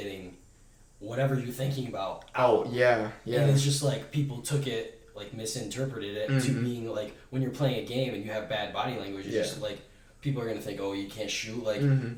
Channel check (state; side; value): identical; both; correlation 1.00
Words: whatever you're thinking about out. Oh yeah. And it's just like people took it, like misinterpreted it to being like when you're playing a game and you have bad body language, it's just like people are gonna think, oh, you can't shoot, like